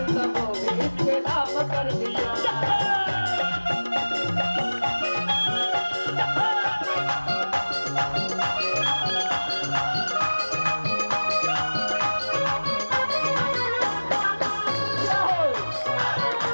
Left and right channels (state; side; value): inverted; both; correlation -1.00